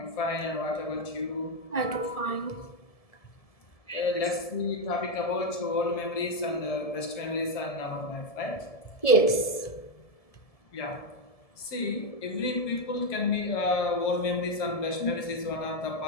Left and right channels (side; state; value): right; late; 1.7 ms